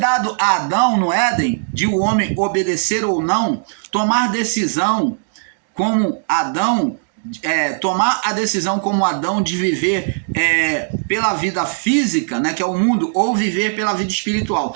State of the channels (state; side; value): silent; left; digital silence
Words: a Adão no Éden, de o homem obedecer ou não, tomar decisão como Adão, tomar a decisão como Adão de viver pela vida física, né, que é o mundo, ou viver pela vida espiritual.